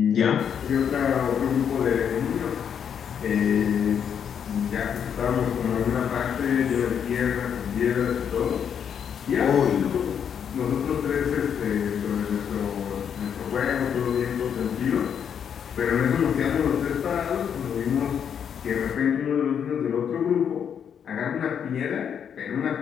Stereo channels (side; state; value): right; quieter; 8.0 dB